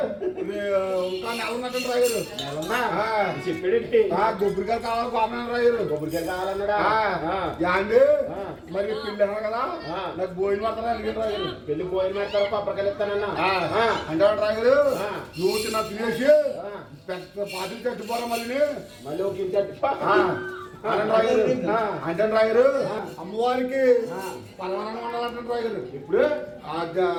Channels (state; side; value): identical; both; correlation 1.00